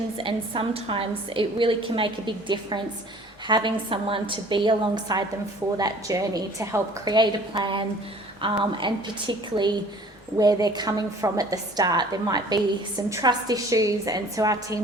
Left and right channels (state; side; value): normal; both; correlation 0.50